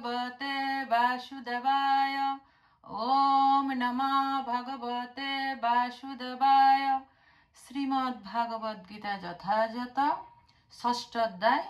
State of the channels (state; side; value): identical; both; correlation 1.00